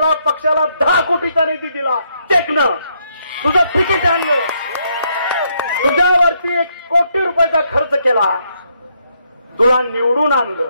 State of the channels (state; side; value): inverted; both; correlation -0.75